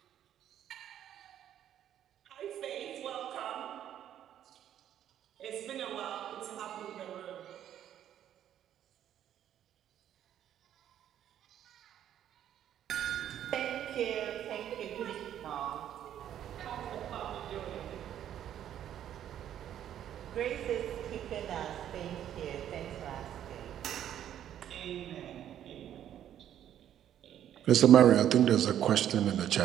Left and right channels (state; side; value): quieter; left; 10.7 dB